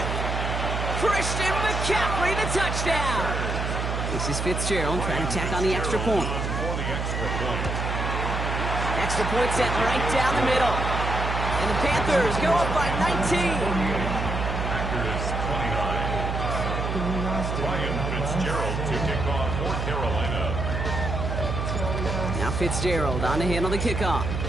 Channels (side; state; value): right; noise; hum, 2 dB below the sound